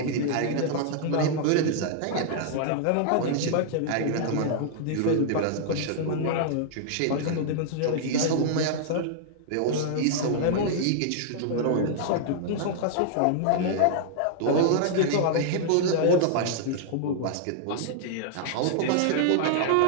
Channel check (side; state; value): both; different; correlation -0.01